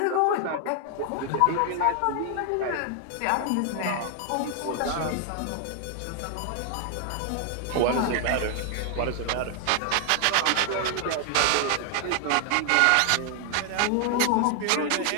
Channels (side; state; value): both; different; correlation 0.00